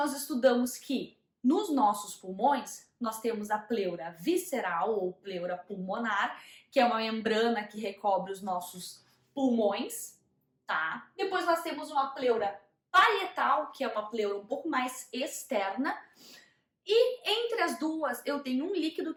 estudamos que nos nossos pulmões nós temos a pleura visceral ou pleura pulmonar, que é uma membrana que recobre os nossos pulmões, tá? Depois nós temos uma pleura parietal, que é uma pleura um pouco mais externa, e entre as duas eu tenho um líquido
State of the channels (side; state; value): both; identical; correlation 1.00